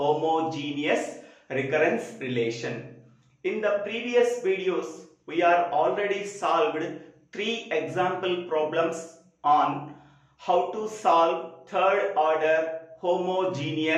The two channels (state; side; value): identical; both; correlation 1.00